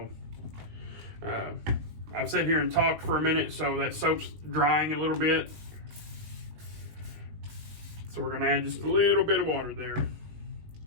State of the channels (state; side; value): late; left; 19 ms